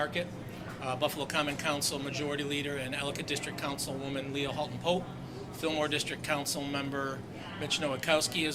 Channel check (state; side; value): identical; both; correlation 1.00